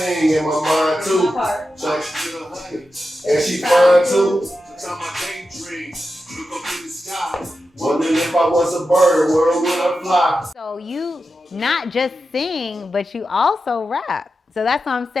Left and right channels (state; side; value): normal; both; correlation 0.90